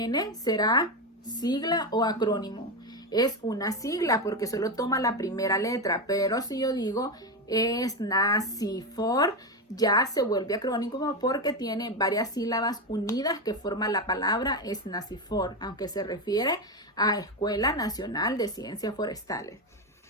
será sigla o acrónimo. Es una sigla porque solo toma la primera letra, pero si yo digo SNACYFOR, ya se vuelve acrónimo porque tiene varias sílabas unidas que forman la palabra SNACYFOR, aunque se refiere a Escuela Nacional de Ciencias Forestales.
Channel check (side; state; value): both; normal; correlation 0.13